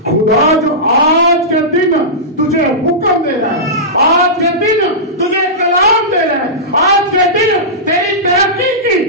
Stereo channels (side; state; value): both; normal; correlation -0.16